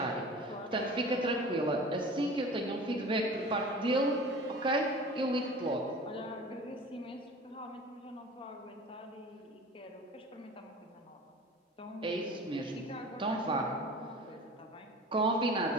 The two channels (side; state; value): both; normal; correlation 0.40